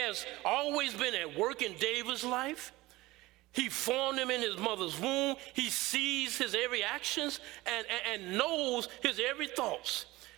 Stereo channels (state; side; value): quieter; left; 19.3 dB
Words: always been at work in David's life. He formed him in his mother's womb. He sees his every actions and knows his every thoughts.